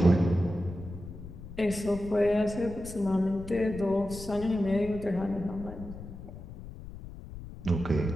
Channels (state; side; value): noise; left; rumble, 13 dB below the sound